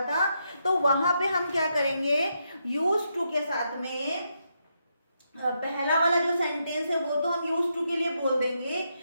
था, तो वहां पे हम क्या करेंगे, यूज टू के साथ में पहला वाला जो सेंटेंस है वो तो हम यूज टू के लिए बोल देंगे,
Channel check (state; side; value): inverted; both; correlation -0.81